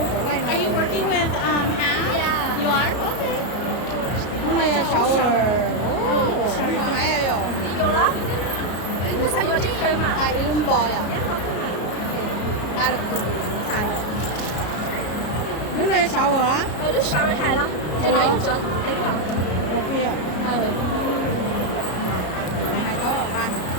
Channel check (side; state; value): right; late; 33 ms